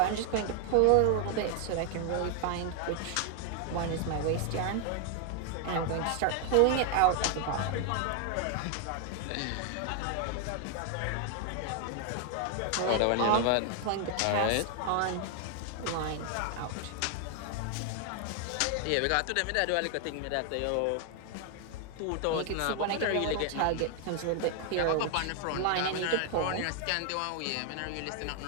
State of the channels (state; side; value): different; both; correlation 0.00